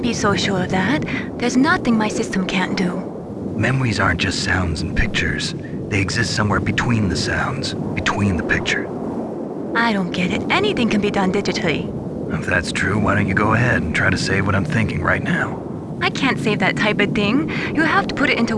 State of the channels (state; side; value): identical; both; correlation 1.00